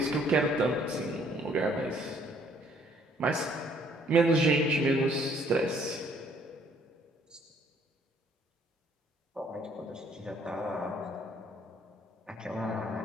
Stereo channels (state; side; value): normal; both; correlation 0.63